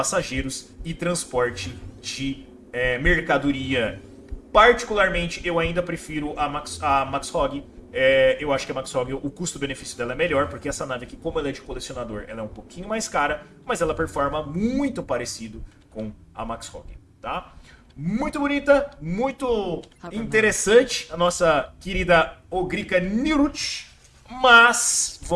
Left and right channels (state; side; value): identical; both; correlation 1.00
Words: e transporte de mercadoria. Particularmente, eu ainda prefiro a Max Hog. Eu acho que a Max Hog, o custo-benefício dela é melhor, porque essa nave aqui, como ela é de colecionador, ela é um pouquinho mais cara, mas ela performa muito parecido com a Max Hog, tá? Muito bonita, muito interessante a nossa querida Ogrika Nirut. Mas